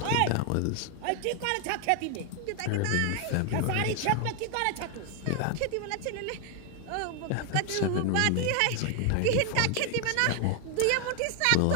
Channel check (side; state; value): both; different; correlation 0.00